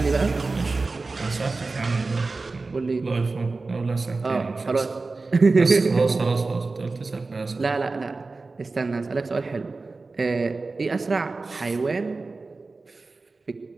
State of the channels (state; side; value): quieter; left; 3.7 dB